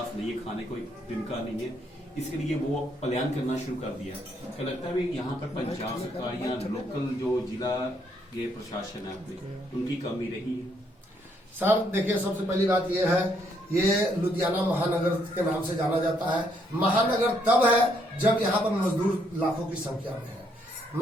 नहीं है, खाने को जिनका नहीं है, इसके लिए वो पलायन करना शुरू कर दिया। क्या लगता है यहाँ पर पंजाब सरकार या लोकल जो जिला ये प्रशासन है उनकी कमी रही है? सर देखिए, सबसे पहली बात यह है, ये लुधियाना महानगर के नाम से जाना जाता है। महानगर तब है जब यहाँ पर मजदूर लाखों की संख्या में है।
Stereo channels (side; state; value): both; normal; correlation 0.71